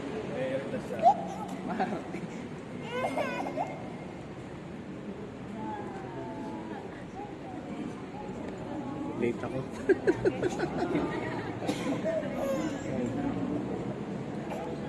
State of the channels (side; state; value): both; identical; correlation 1.00